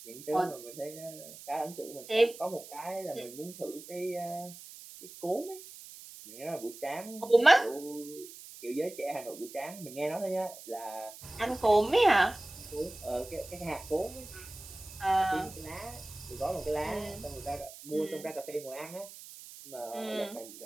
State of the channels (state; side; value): noise; right; hiss, 15 dB below the sound